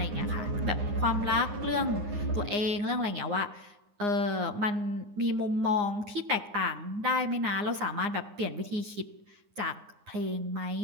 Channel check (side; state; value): left; late; 9.7 ms